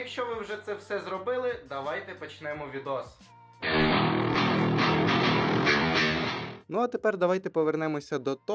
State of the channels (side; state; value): both; identical; correlation 1.00